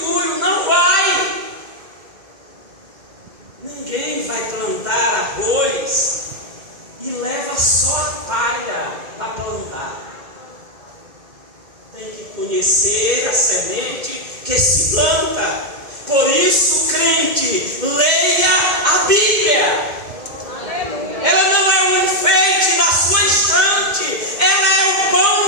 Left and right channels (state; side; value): late; left; 2.1 ms